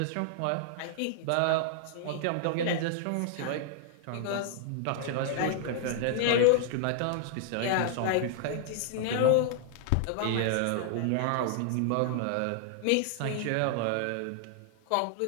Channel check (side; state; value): both; different; correlation -0.01